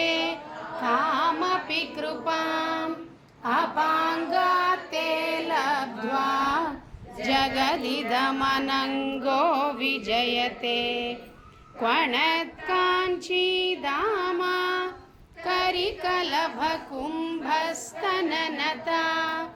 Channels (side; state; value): both; identical; correlation 1.00